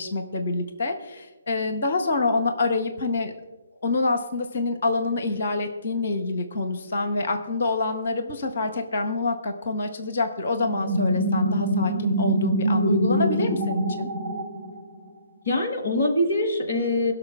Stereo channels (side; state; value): both; inverted; correlation -0.62